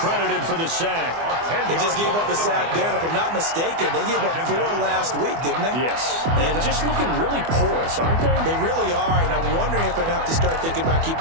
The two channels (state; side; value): late; left; 24 ms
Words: for the sack. They just gave up a sack there, and if I'm not mistaken, they gave up 4 last week, didn't they? Yes. And just looking really porous, aren't they? They really are, and I'm wondering if they're going to have to start thinking about